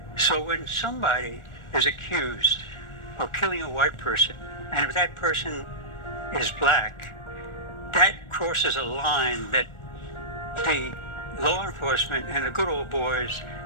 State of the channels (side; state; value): right; late; 1.4 ms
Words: So when somebody is accused of killing a white person, and if that person is black, that crosses a line that the law enforcement and the good old boys